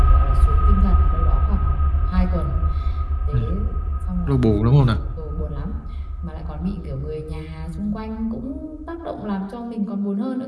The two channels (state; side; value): identical; both; correlation 1.00